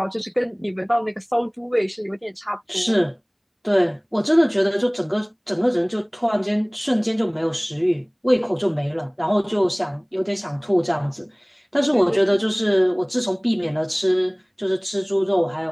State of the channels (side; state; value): both; identical; correlation 1.00